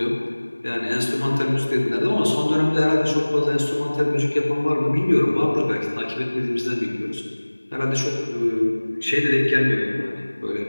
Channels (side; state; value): both; inverted; correlation -1.00